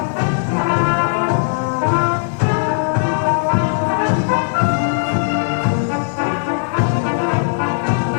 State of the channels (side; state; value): right; silent; 63 dB below the other